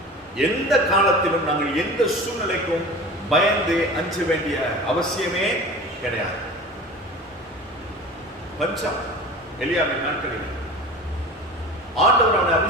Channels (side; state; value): both; normal; correlation 0.36